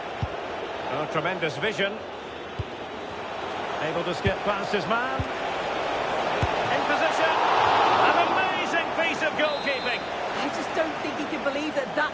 Oh, tremendous vision. Able to skip past his man. In position. An amazing piece of goalkeeping. I just don't think he can believe that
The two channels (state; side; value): identical; both; correlation 1.00